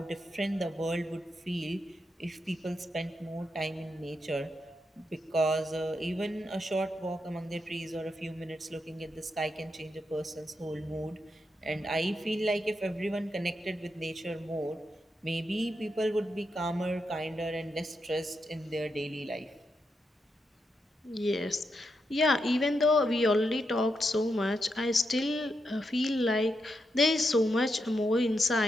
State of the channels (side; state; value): both; normal; correlation 0.84